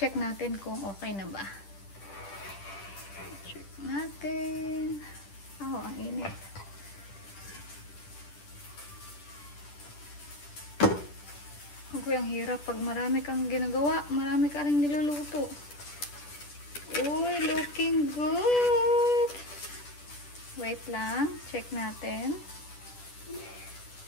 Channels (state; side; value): late; right; 10 ms